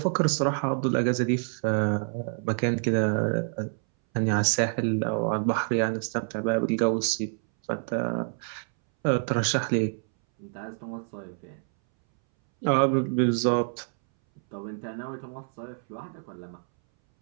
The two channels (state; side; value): silent; left; 60 dB below the other